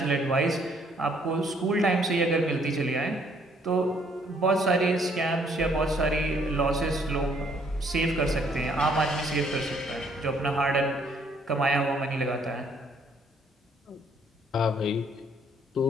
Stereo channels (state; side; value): normal; both; correlation 0.65